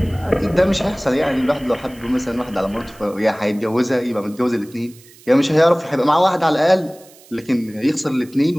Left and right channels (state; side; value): noise; right; hiss, 25 dB below the sound